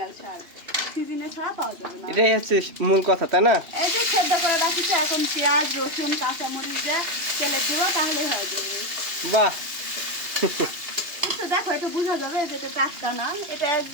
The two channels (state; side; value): late; left; 2.8 ms